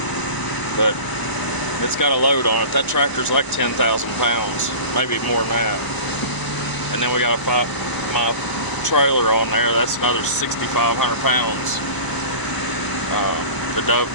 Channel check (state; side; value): late; right; 1.0 ms